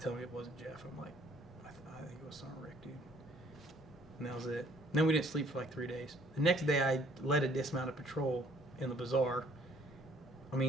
me it wasn't Jeff. I'm like, I think it was Sergeant Rick, dude. And that was it. And then we didn't sleep for like 3 days. The next day, I led a dismounted patrol in the bazaar, I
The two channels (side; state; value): both; normal; correlation 0.61